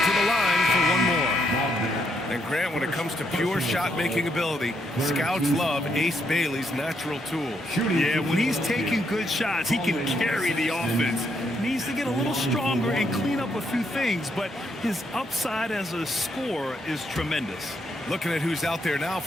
line for one more. And Grant, when it comes to pure shot-making ability, scouts love Ace Bailey's natural tool. Yeah, when he's taking good shots, he can carry the offense. Needs to get a little stronger and clean up a few things, but his upside as a scorer is tremendous. Looking at who's out there now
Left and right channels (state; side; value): normal; both; correlation 0.76